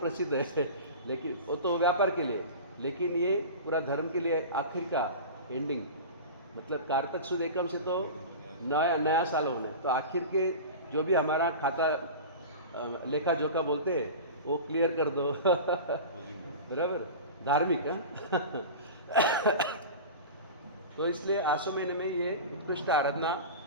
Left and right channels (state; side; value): inverted; both; correlation -0.31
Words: है, लेकिन वो तो व्यापार के लिए, लेकिन ये पूरा धर्म के लिए आखिर का एंडिंग, मतलब कार्तिक सुद एकम से तो नया साल होना है। तो आखिर के जो भी हमारा खाता लेखा जोखा बोलते हैं वो क्लियर कर दो बराबर, धार्मिक है तो इसलिए आसो महीने में ये उत्कृष्ट आराधना